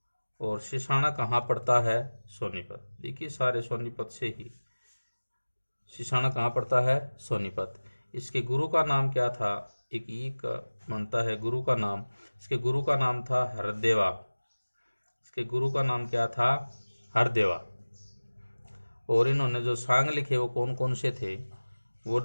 और सिसाना कहाँ पड़ता है, सोनीपत। देखिए सारे सोनीपत से ही। सिसाना कहाँ पड़ता है, सोनीपत। इसके गुरु का नाम क्या था, एक ई का बनता है गुरु का नाम। इसके गुरु का नाम था हरदेवा, इसके गुरु का नाम क्या था, हरदेवा। और इन्होंने जो सांग लिखे वो कौन कौन से थे, वो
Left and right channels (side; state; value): both; inverted; correlation -1.00